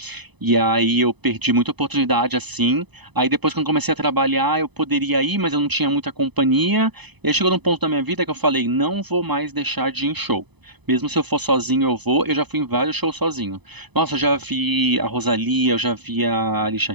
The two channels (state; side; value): late; left; 0.99 ms